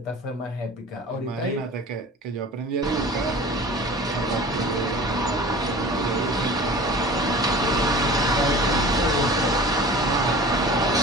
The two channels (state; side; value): normal; both; correlation 0.41